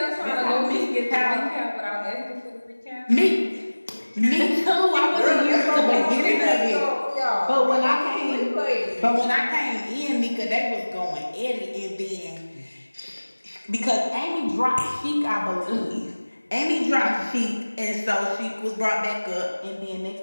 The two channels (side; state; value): both; inverted; correlation -1.00